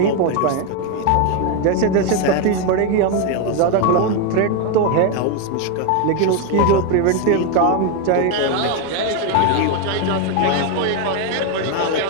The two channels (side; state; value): both; different; correlation 0.02